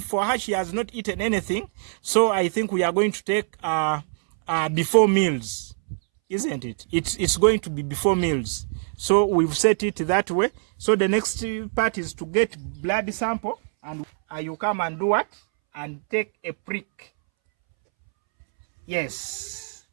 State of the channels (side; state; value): left; silent; 63 dB below the other